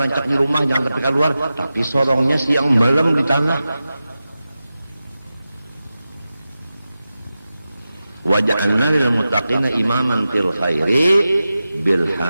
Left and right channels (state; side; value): inverted; both; correlation -0.93